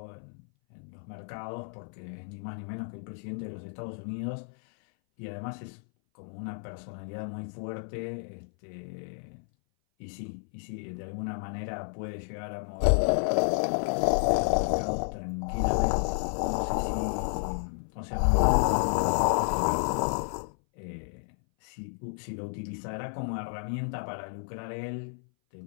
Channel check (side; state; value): right; silent; 57 dB below the other